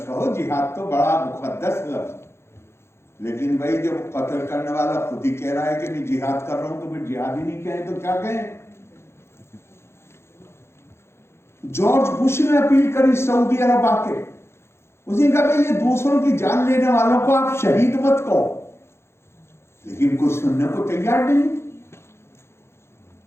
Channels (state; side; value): late; right; 0.12 ms